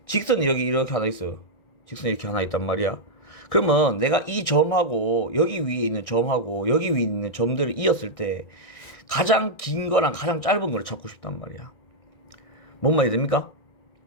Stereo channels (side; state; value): right; late; 1.6 ms